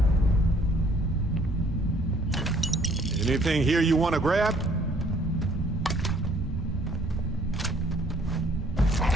Anything here you want to grab?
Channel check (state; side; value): normal; both; correlation 0.61